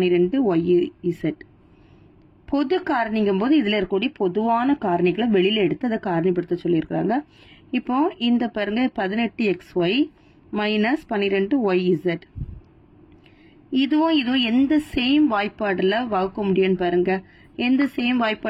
பொது காரணிங்கும் போது இதுல இருக்கக்கூடிய பொதுவான காரணிகளை வெளியில எடுத்து அதை காரணிப்படுத்த சொல்லியிருக்காங்க. இப்போ இந்த பாருங்க 18xy மைனஸ் 12yz. இதுவும் எந்த சேம் வாய்ப்பாடுல வகுக்க முடியும்னு பாருங்க. எந்த சேம்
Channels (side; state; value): both; identical; correlation 1.00